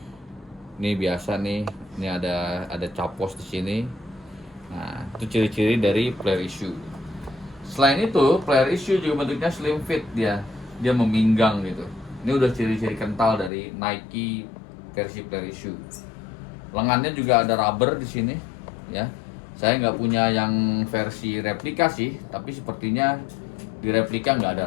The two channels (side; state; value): right; drops out; at 13.5 s